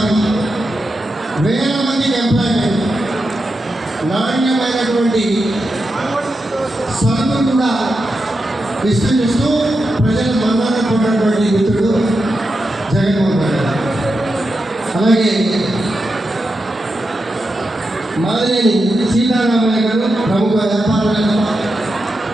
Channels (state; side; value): normal; both; correlation 0.88